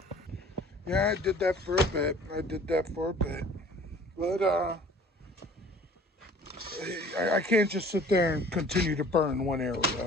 Yeah, I did that for a bit. But I can't just sit there and continue to burn one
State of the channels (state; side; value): normal; both; correlation 0.49